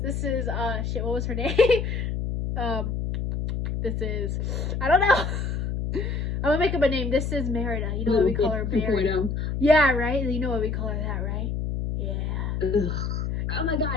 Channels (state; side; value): noise; left; hum, 2 dB below the sound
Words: is, shit, what was her name? This is, I don't know. I'm gonna make up a name. This is Merida. You know what we call her, Merida? Yeah, right? You know what we call her, that, right? Yeah. Ugh. Oh my